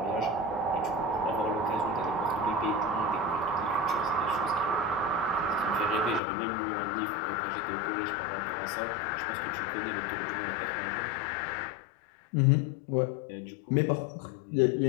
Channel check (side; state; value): right; drops out; at 6.2 s